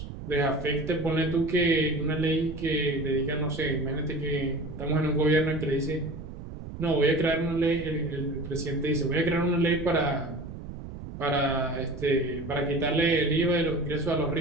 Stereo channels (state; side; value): noise; right; rumble, 11 dB below the sound